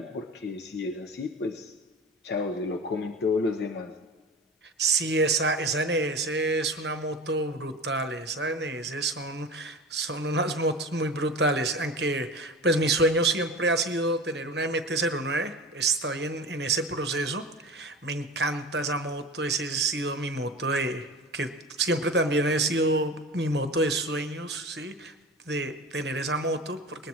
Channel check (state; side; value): normal; both; correlation 0.32